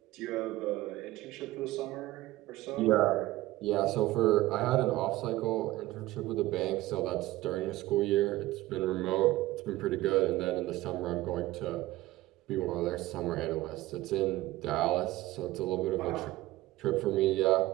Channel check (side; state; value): left; quieter; 17.4 dB